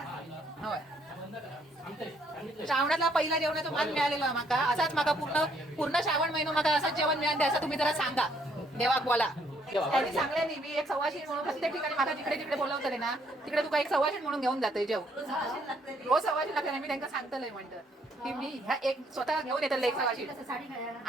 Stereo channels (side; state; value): both; normal; correlation 0.68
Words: होय. श्रावणातला पहिला जेवणाचा मान मिळालेला माका असाच माका पूर्ण पूर्ण श्रावण महिना माका असंच जेवण मिळाले असं तुम्ही जरा सांगा देवाक बोला. त्यांनी सांगले नाही मी एक सवाशीण म्हणून प्रत्येक ठिकाणी माका जिकडे जिकडे बोलवतले ना तिकडे तुका एक सवाशीण म्हणून घेऊन जाते जेव रोज सवाशीण लागते. मी त्यांना सांगतलंय म्हणतं की मी ह्या एक स्वतः घेऊन येतले एक सवाशीण